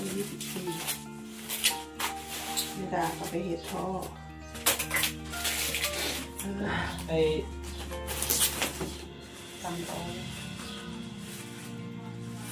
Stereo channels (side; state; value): both; identical; correlation 1.00